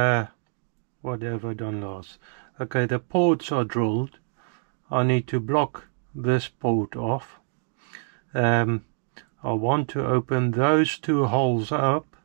What have I done last? Okay, the ports are drilled. I need to block this port off. I want to open those two holes up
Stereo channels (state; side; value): silent; left; digital silence